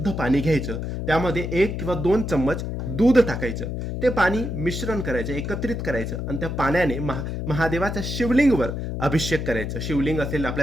पाणी घ्यायचं. त्यामध्ये 1 किंवा 2 चम्मच दूध टाकायचं. ते पाणी मिश्रण करायचं, एकत्रित करायचं आणि त्या पाण्याने महादेवाच्या शिवलिंगवर अभिषेक करायचं. शिवलिंग असेल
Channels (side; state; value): left; noise; hum, 4 dB below the sound